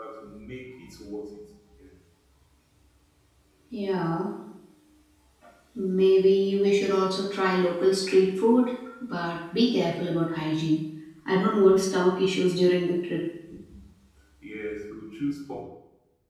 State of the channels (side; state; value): both; identical; correlation 1.00